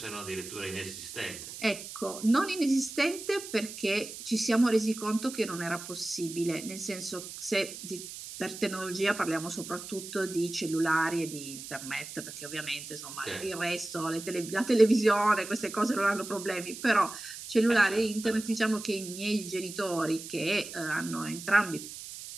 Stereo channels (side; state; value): right; noise; hiss, 11 dB below the sound